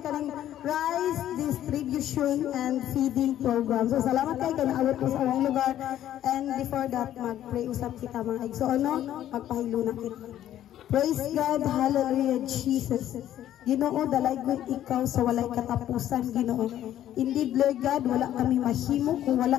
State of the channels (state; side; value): quieter; right; 11.9 dB